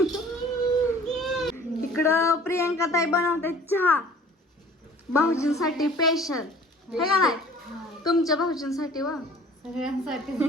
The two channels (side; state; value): both; normal; correlation 0.50